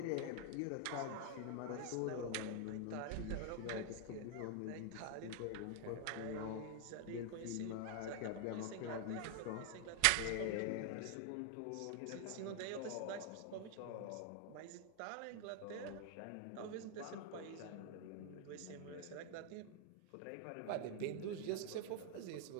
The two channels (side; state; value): both; different; correlation 0.00